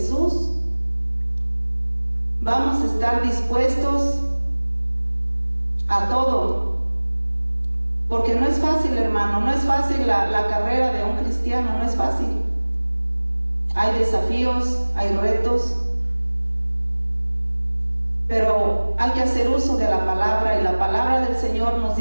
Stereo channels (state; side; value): inverted; both; correlation -1.00